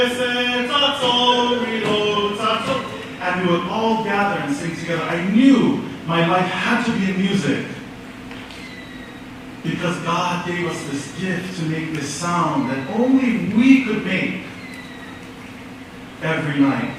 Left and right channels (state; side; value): identical; both; correlation 1.00